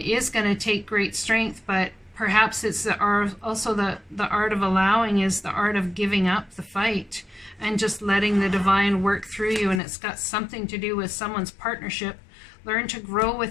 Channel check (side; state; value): right; drops out; at 9.8 s